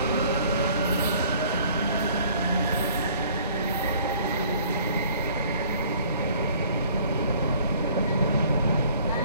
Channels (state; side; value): inverted; both; correlation -0.55